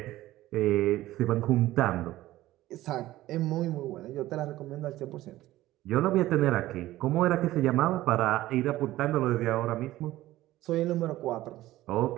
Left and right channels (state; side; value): quieter; left; 15.9 dB